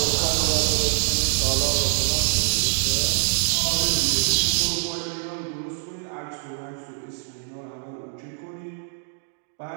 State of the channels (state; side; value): silent; left; digital silence